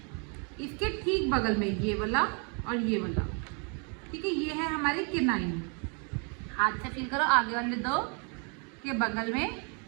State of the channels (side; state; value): left; quieter; 36.6 dB